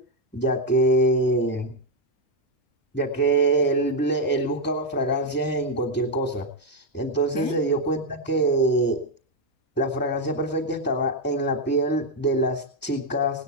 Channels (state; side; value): normal; both; correlation 0.02